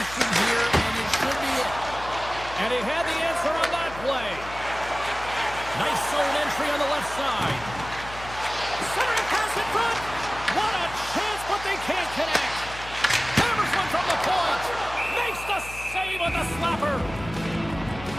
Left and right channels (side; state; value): left; noise; hum, 14 dB below the sound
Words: here, and it should be it. And he had the answer on that play. Nice zone entry on the left side. Centering pass in front. What a chance, but they can't connect. Hammers one from the point. Makes the save on the slapper.